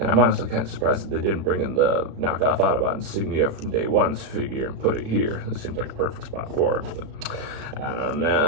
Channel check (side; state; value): left; late; 36 ms